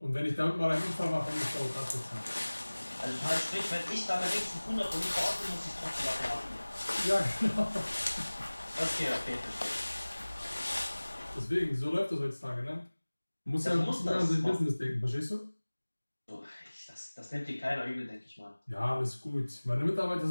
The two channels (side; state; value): both; inverted; correlation -1.00